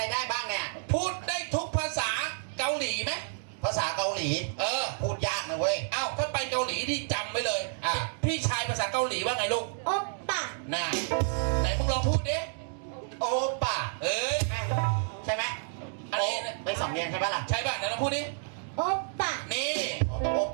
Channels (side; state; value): left; silent; digital silence